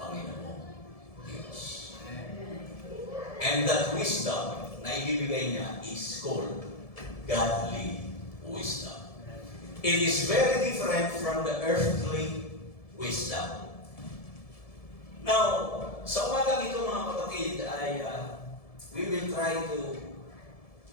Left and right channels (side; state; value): right; late; 1.7 ms